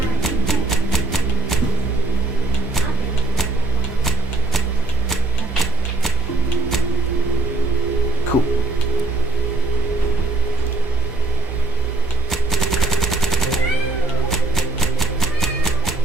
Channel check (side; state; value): left; quieter; 3.3 dB